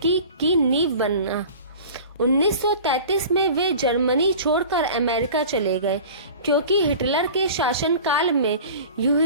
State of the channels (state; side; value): inverted; both; correlation -0.40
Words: की नींव बना। 1933 में वे जर्मनी छोड़कर अमेरिका चले गए, क्योंकि हिटलर के शासनकाल में